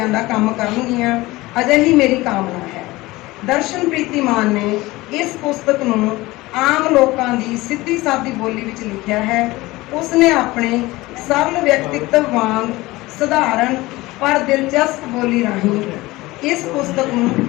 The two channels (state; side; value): quieter; right; 19.8 dB